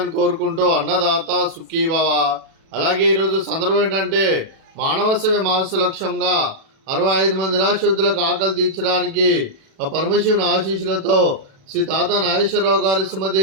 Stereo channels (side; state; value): left; late; 37 ms